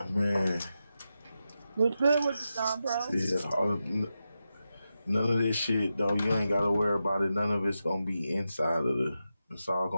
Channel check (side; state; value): both; inverted; correlation -0.89